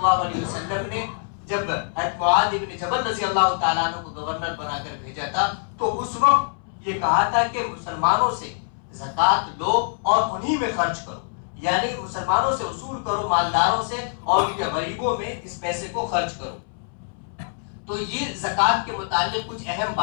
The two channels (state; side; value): silent; right; 62 dB below the other